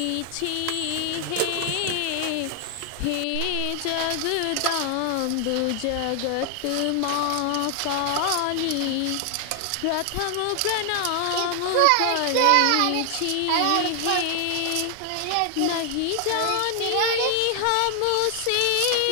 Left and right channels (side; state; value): both; different; correlation 0.00